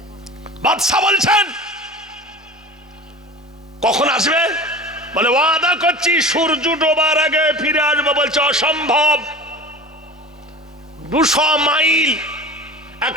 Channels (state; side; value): normal; both; correlation 0.35